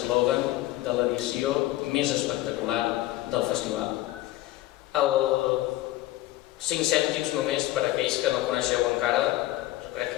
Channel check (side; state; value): right; quieter; 16.3 dB